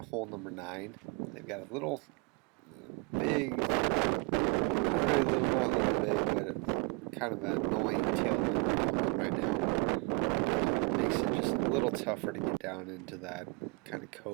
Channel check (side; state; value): left; quieter; 28.6 dB